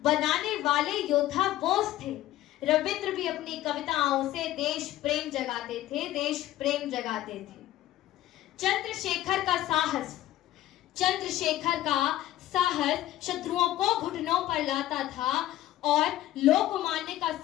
बनाने वाले योद्धा बोस थे। रविंद्र भी अपनी कविताओं से देश प्रेम जगाते थे, देश प्रेम जगाते थे। चंद्रशेखर का साहस, चंद्रशेखर का साहस शत्रुओं को घुटनों पर लाता था और लोकमान्य का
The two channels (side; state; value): right; quieter; 14.3 dB